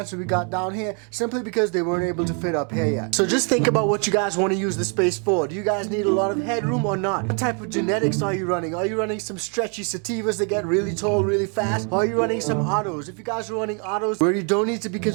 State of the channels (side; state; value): left; quieter; 38.7 dB